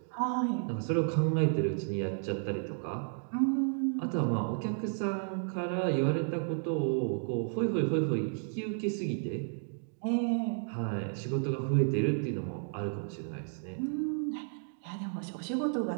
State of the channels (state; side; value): silent; left; digital silence